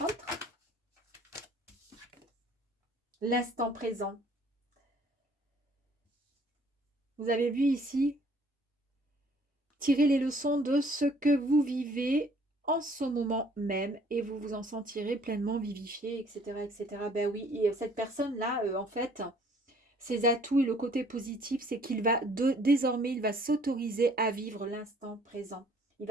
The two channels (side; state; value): both; normal; correlation 0.59